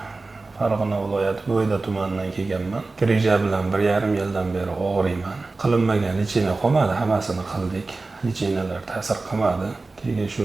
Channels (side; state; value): left; quieter; 3.6 dB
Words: Farg'ona viloyati Bo'yda tumanidan kelganman. Greja bilan 1,5 yildan beri og'riyman. Qilinmagan lecheniya qolmadi, hammasini qildik. Lecheniyalar ta'sir qilmadi. Keyin shu